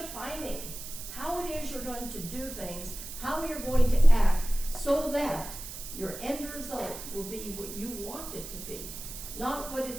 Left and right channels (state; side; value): noise; right; hiss, 10 dB below the sound